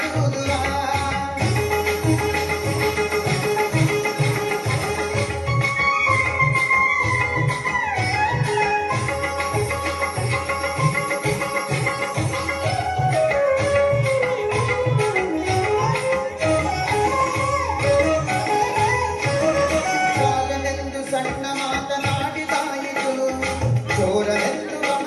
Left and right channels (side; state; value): both; identical; correlation 1.00